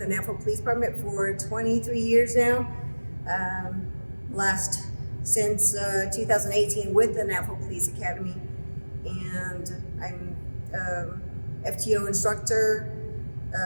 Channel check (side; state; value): both; inverted; correlation -1.00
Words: Navajo Police Department for 23 years now, since 2018 with the Navajo Police Academy, and I'm FTO instructor,